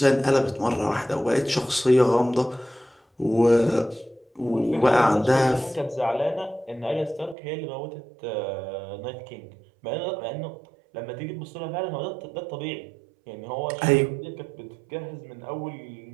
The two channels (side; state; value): left; drops out; at 7.4 s